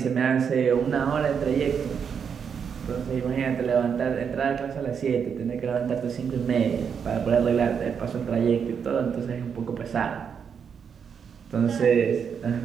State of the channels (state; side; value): quieter; left; 7.0 dB